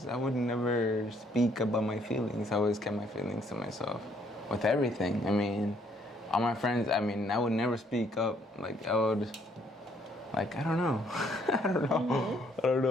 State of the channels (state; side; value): normal; both; correlation 0.67